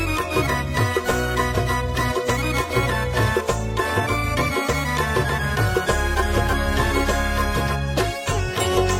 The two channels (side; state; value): both; identical; correlation 1.00